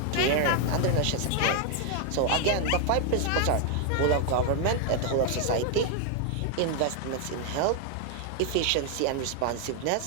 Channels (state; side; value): different; both; correlation 0.00